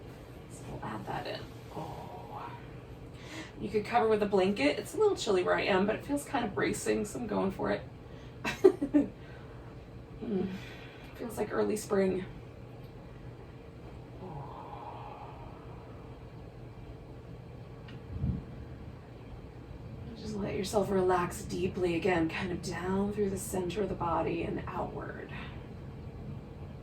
So we'll add that in. Oh, you could cover with a blanket. It's a little chilly where I am, but it feels kind of bracing, so I'm going for it. Feels like early spring. Let yourself relax deeply again, kind of down through the center of the body and outward.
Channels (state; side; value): identical; both; correlation 1.00